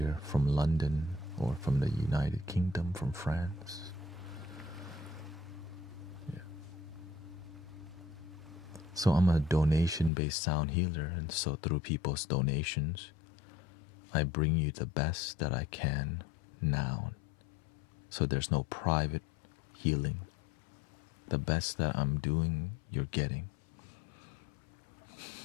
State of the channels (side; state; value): right; drops out; at 10.1 s